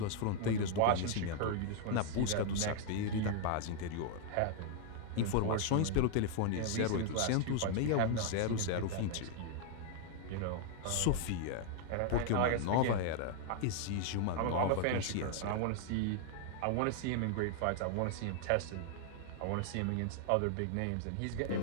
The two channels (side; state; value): both; different; correlation 0.00